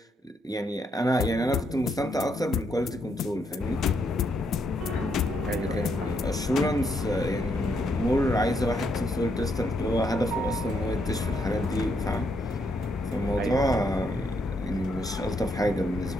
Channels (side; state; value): both; normal; correlation 0.76